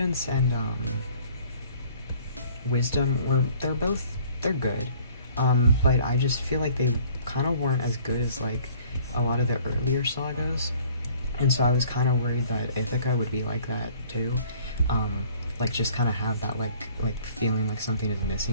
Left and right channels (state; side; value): inverted; both; correlation -0.55